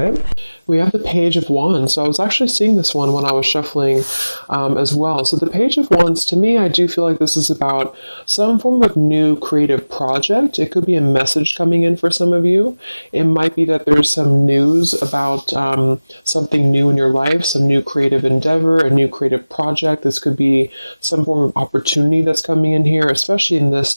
We have the Page of Wands. So I was actually seeing this one when I was shuffling as well. So the Page of Wands, to me, I do feel like this is about some form of new creative project. It could be a message coming in for some of you. It might be that there's some news about something new in your life, some new creative endeavor, a new creative project. This could be some form of opportunity that's coming in here, especially in this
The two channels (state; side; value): inverted; both; correlation -0.99